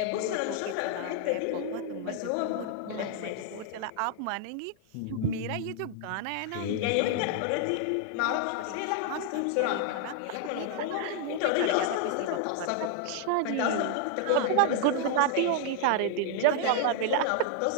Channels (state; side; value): different; both; correlation 0.00